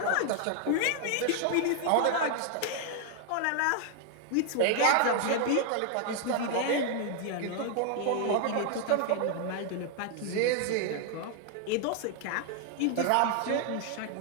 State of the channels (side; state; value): both; different; correlation 0.00